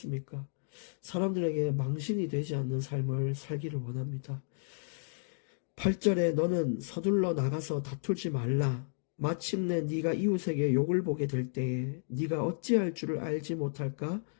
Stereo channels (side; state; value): right; silent; digital silence